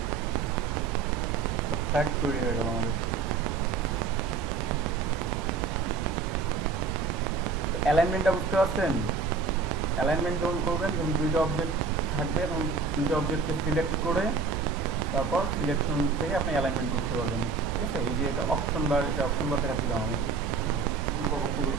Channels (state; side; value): quieter; left; 4.9 dB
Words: ফ্ল্যাগ তৈরি হয়ে গেল আমাদের। অ্যালাইনমেন্টটা বুঝতে পারছেন? অ্যালাইনমেন্ট যখন করবেন, যখন দুইটা অবজেক্ট থাকবে তখন দুইটা অবজেক্টকে সিলেক্ট করে তারপর সিলেকশন থেকে আপনি অ্যালাইনমেন্ট করতে পারবেন। ঠিক আছে? এই যে এটা অপশন বার, এটা অপশন বার দেখাচ্ছিলাম আমি,